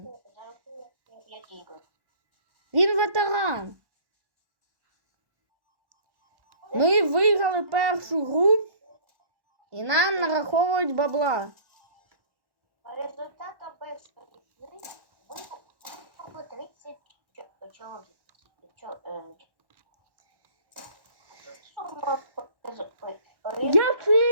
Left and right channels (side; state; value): left; late; 1.1 ms